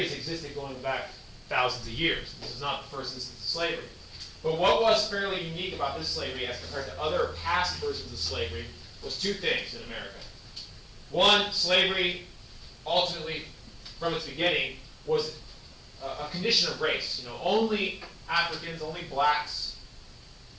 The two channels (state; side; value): identical; both; correlation 1.00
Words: has existed going back thousands of years. This is not the first instance of slavery. But what was fairly unique about this slavery as compared to other past versions of slavery was two things in America. One, slavery, ultimately, from its beginning, was a condition of race. Only Africans, only blacks,